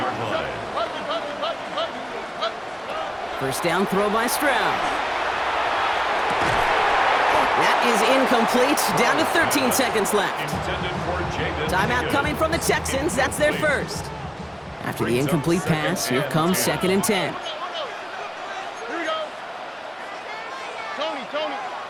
line. First down throw by Stroud. That is incomplete. Down to 13 seconds left. Timeout coming from the Texans. That's their first. After the incomplete pass, here comes 2nd and 10. Here we go. Tony.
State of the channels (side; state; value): both; identical; correlation 1.00